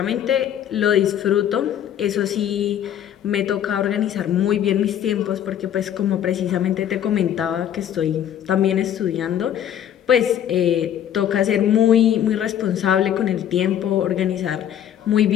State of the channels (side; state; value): right; quieter; 10.2 dB